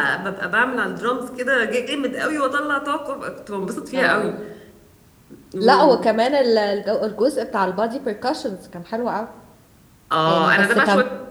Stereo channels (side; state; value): both; identical; correlation 1.00